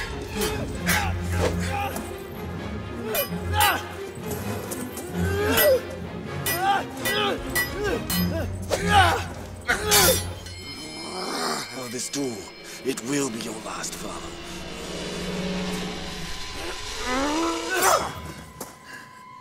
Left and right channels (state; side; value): identical; both; correlation 1.00